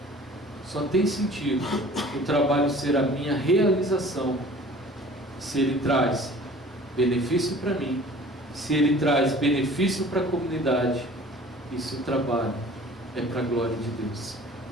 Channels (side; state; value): both; normal; correlation 0.47